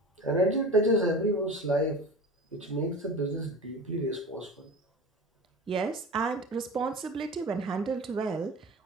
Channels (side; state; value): both; normal; correlation 0.34